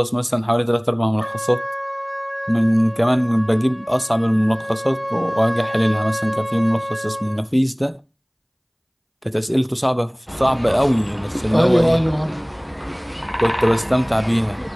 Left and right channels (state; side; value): identical; both; correlation 1.00